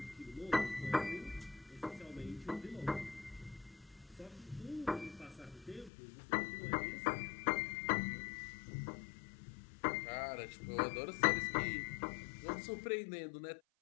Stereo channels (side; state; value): right; drops out; at 5.9 s